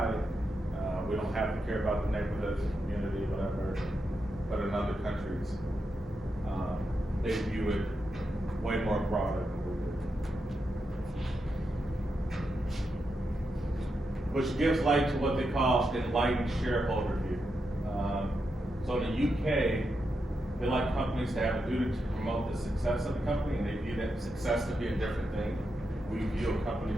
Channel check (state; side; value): normal; both; correlation 0.85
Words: We don't have to care about the neighborhoods, the community, whatever, but in other countries, they view it way more broader than we do. Which gives light to what they call enlightened shareholder view. So in the UK, they like companies to have a duty to promote the success of the company, and they view that success to be a different thing. We view a company